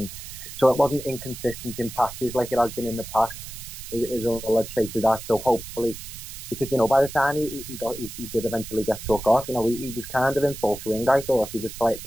so it wasn't inconsistent in patches like it has been in the past. Is all I'd say to that. So hopefully, because by the time he did eventually get took off, he was kind of in full swing. I thought he was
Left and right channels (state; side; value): noise; right; hiss, 12 dB below the sound